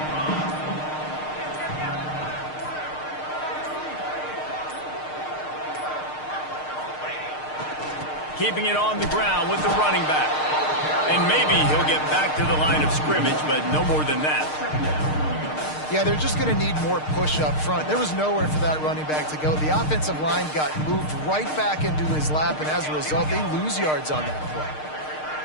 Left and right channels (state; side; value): late; right; 6.5 ms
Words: Keeping it on the ground with the running back. And maybe he'll get back to the line of scrimmage, but no more than that. Yeah, they're just going to need more push up front. There was nowhere for that running back to go. The offensive line got moved right back into his lap, and as a result, they lose yards on that play.